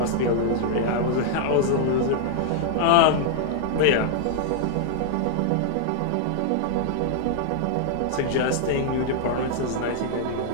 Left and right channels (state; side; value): different; both; correlation -0.01